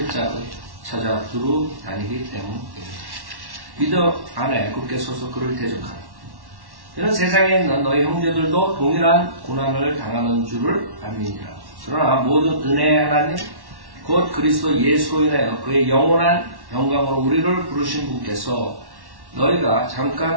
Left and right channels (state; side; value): late; left; 1.1 ms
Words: 자를 찾아 두루 다니기 때문이다. 믿음 안에 굳게 서서 그를 대적하라. 이는 세상에 있는 너희 형제들도 동일한 고난을 당하는 줄을 알미니라. 그러나 모든 은혜의 하나님 곧 그리스도 예수로 인하여 그의 영원한 영광으로 우리를 부르신 분께서 너희가